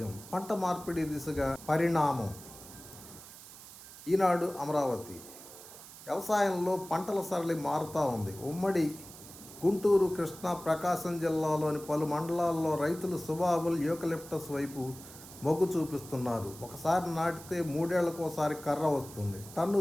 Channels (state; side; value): noise; right; hiss, 16 dB below the sound